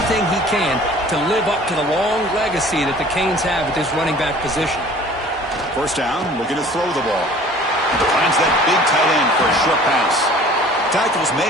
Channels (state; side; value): normal; both; correlation 0.48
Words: he can to live up to the long legacy that the Canes have at this running back position. First down, looking to throw the ball. Finds that big tight end for a short pass. Tackle's